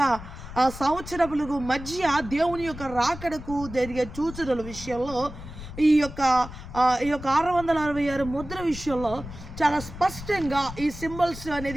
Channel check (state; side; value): noise; left; rumble, 12 dB below the sound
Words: సంవత్సరములకు మధ్య దేవుని యొక్క రాకడకు జరిగే సూచనల విషయంలో ఈ యొక్క 666 ముద్ర విషయంలో చాలా స్పష్టంగా ఈ సింబల్స్